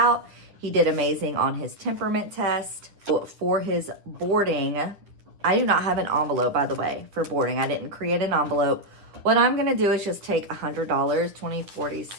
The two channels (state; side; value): late; left; 9.7 ms